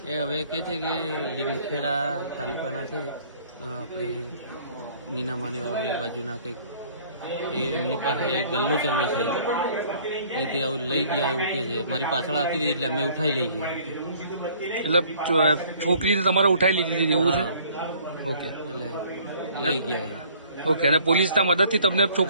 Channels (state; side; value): inverted; both; correlation -0.56